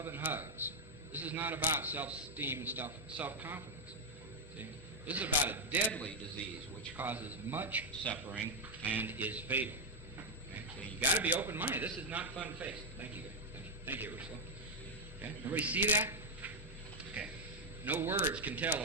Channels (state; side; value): normal; both; correlation 0.00